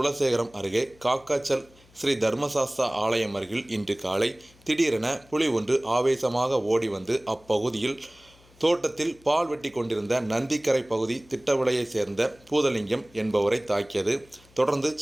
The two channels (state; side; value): noise; left; hum, 28 dB below the sound